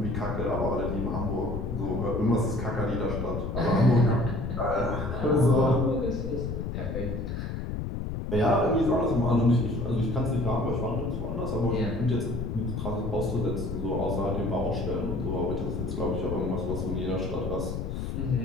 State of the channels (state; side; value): noise; left; rumble, 4 dB below the sound